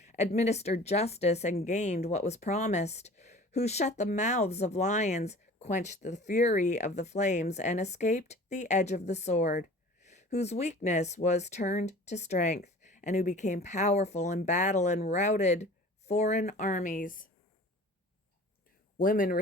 administered justice, and gained what was promised, who shut the mouths of lions, quenched the fury of the flames, and escaped the edge of the sword, whose weakness was turned to strength, and who became powerful in battle and routed foreign armies. Women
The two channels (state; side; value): normal; both; correlation 0.44